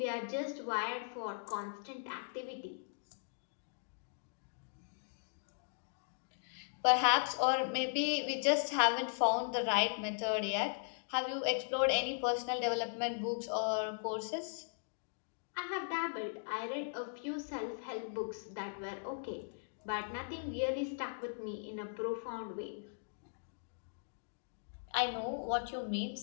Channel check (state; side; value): silent; right; digital silence